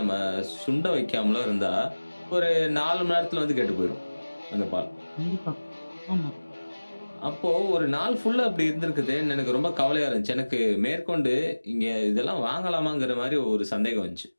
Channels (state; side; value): inverted; both; correlation -1.00